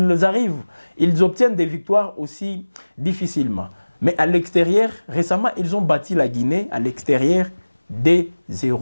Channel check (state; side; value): inverted; both; correlation -1.00